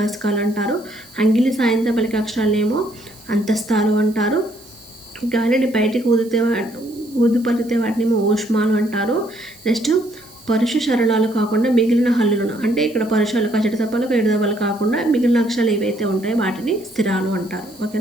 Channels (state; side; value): noise; right; hiss, 24 dB below the sound